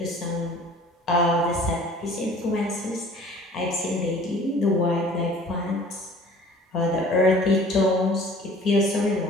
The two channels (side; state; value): both; normal; correlation 0.49